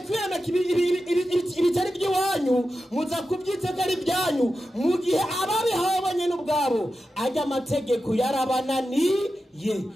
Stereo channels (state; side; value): normal; both; correlation 0.91